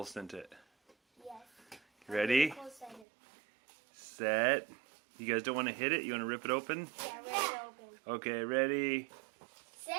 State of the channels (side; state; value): left; drops out; at 3.1 s